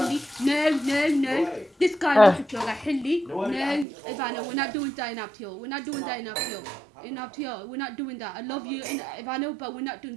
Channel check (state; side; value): drops out; left; at 3.9 s